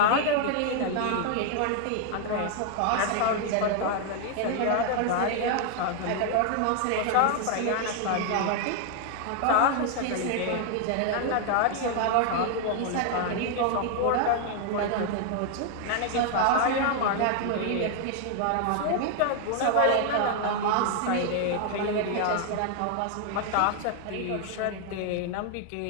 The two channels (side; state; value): both; different; correlation 0.00